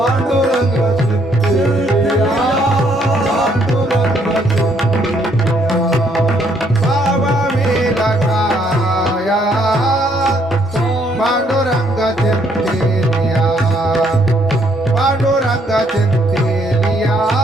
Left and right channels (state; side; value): normal; both; correlation 0.69